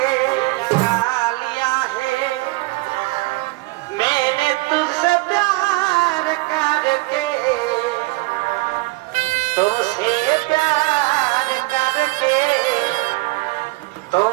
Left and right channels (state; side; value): quieter; left; 23.2 dB